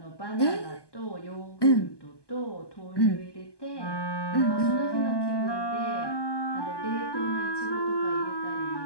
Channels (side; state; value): right; late; 1.2 ms